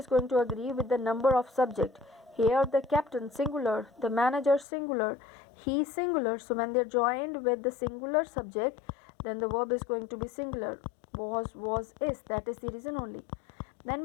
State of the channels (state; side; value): drops out; right; at 4.7 s